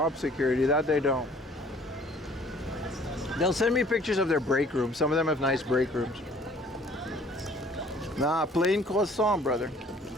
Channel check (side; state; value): both; normal; correlation 0.55